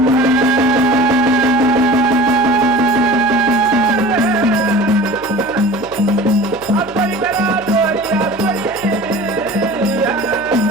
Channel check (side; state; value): left; noise; hum, 21 dB below the sound